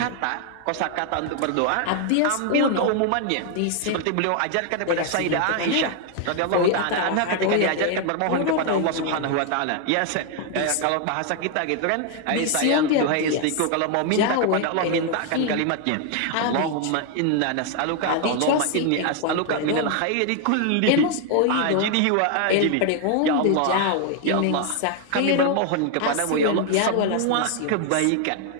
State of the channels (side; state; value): both; different; correlation 0.00